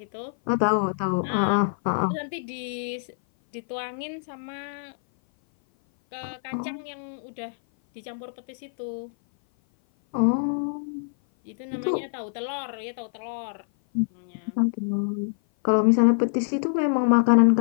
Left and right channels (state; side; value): silent; right; 57 dB below the other